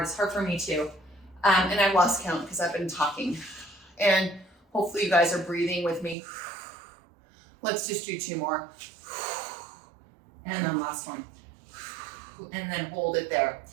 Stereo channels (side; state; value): left; drops out; at 6.2 s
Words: for me too. And I've lost count because I've been talking. And hopefully you guys are breathing with me. Let's just do 2 more. And then last one. And then hold it there.